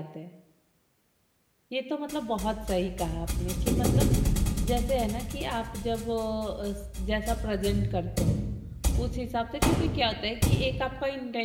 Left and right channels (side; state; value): both; identical; correlation 1.00